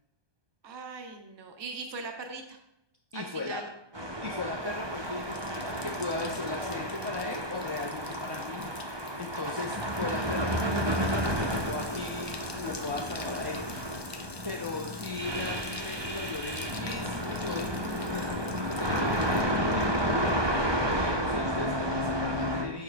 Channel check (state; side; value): late; left; 1.2 ms